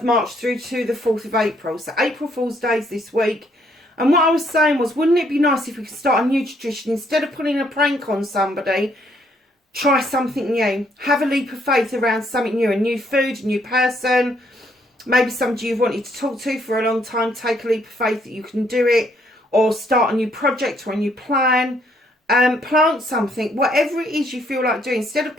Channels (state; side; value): normal; both; correlation 0.69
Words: March through to the 4th of April. So April Fool's Day is this week. And what I was saying was, wouldn't it be nice if we could start a new tradition? Instead of putting a prank on somebody, try something new. Have a leap of faith around something new. A new food, a new person. Maybe somebody you've wanted to talk to for a long time. Take a leap of faith that you can do it. Or start a new project or a new plan. Plant something. Whatever it is you feel like doing. Instead of